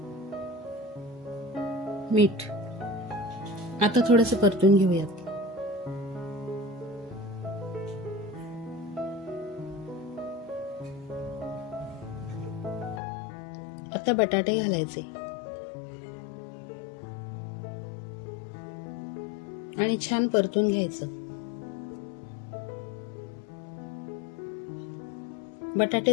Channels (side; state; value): right; drops out; at 13.0 s